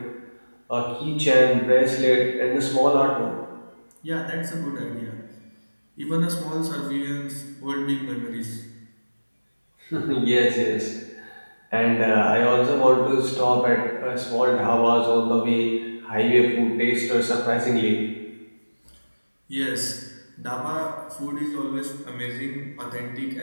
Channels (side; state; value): both; inverted; correlation -1.00